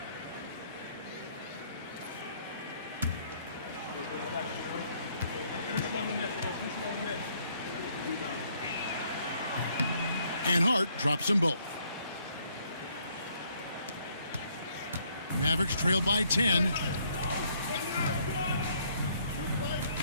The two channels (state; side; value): inverted; both; correlation -0.67